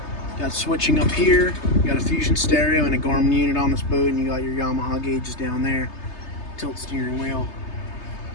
Got switching up here. You got a Fusion stereo and a Garmin unit on this boat, and you got your Yamaha gauges down there. Tilt steering wheel.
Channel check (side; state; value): right; late; 3.3 ms